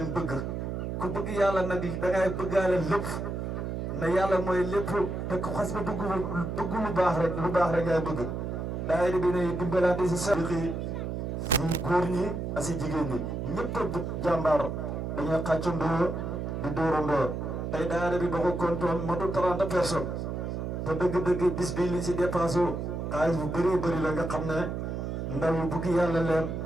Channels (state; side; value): noise; right; hum, 4 dB below the sound